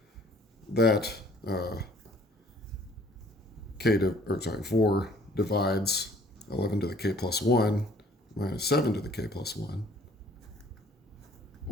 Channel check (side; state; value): both; normal; correlation 0.56